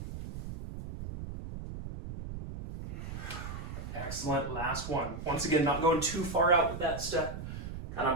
Excellent, last one. Once again, not going too far out with that step, kind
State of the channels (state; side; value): noise; right; rumble, 8 dB below the sound